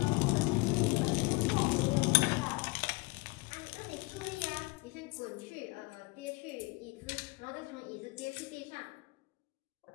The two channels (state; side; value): quieter; right; 25.2 dB